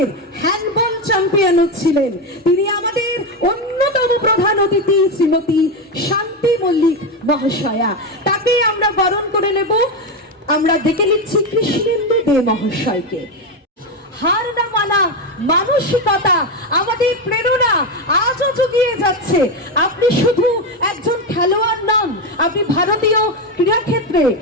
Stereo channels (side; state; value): both; normal; correlation 0.11